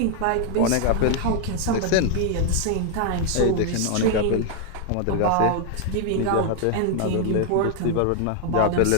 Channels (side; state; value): both; different; correlation 0.00